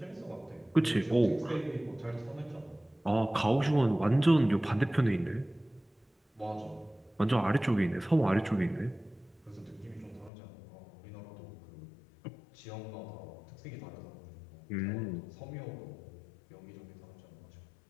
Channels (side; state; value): right; drops out; at 10.3 s